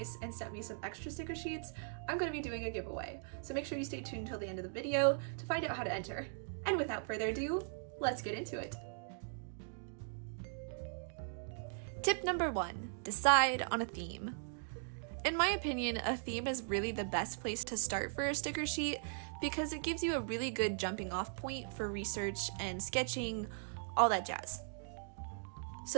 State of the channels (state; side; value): silent; left; digital silence